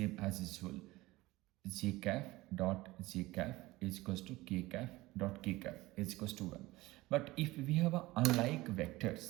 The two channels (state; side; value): quieter; left; 19.4 dB